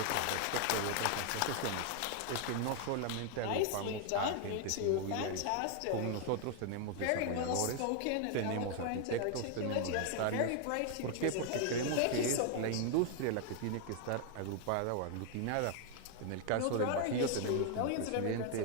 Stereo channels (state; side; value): different; both; correlation 0.00